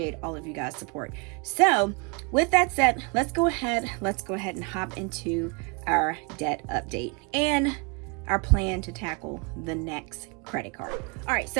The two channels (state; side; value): quieter; left; 33.0 dB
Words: all of you guys' support. So with that said, let's go ahead and hop into our debt update and our plan to tackle the next credit card. All right,